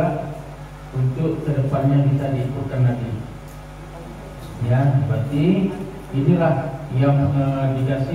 untuk kedepannya bisa diikutkan lagi. Ya, berarti inilah yang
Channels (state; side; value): identical; both; correlation 1.00